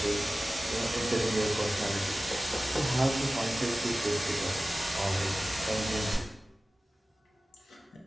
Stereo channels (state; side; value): normal; both; correlation 0.96